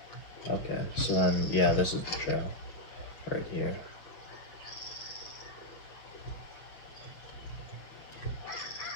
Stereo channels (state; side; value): late; right; 6.2 ms